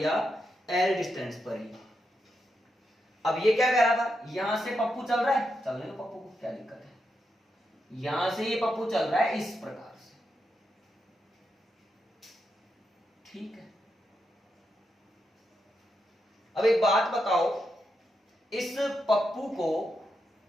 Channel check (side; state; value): both; normal; correlation 0.84